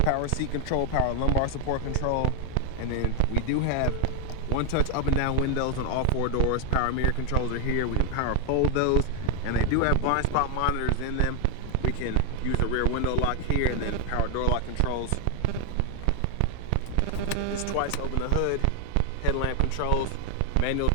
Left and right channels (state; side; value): different; both; correlation 0.00